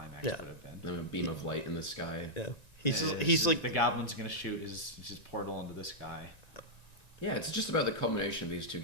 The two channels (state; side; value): late; right; 1.9 ms